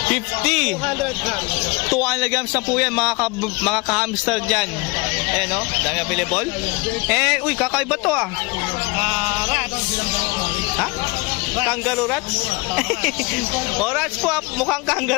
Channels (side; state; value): right; quieter; 25.9 dB